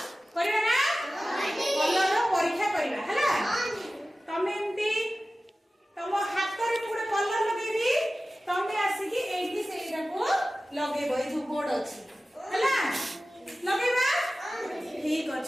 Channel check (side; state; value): both; normal; correlation 0.96